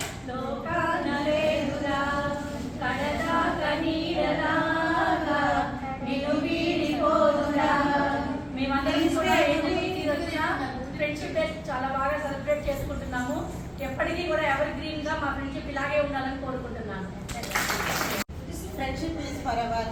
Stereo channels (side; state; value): both; identical; correlation 1.00